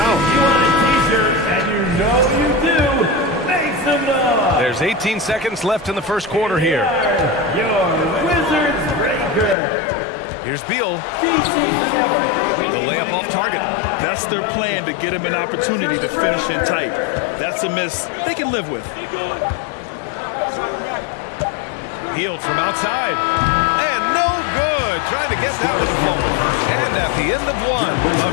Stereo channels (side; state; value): right; drops out; at 9.6 s